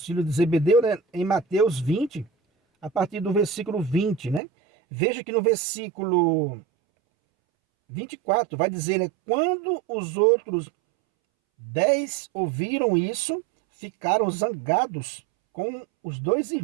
filhos de Zebedeu, né, em Mateus 20, a partir do versículo 20, né? Veja que no versículo 24 vai dizer, né, quando os outros 10 ouviram isso, ficaram zangados com os dois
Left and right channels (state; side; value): drops out; left; at 4.4 s